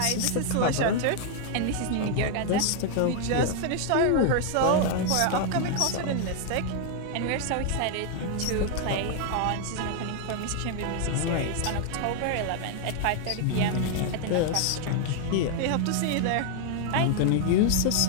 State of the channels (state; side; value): different; both; correlation 0.00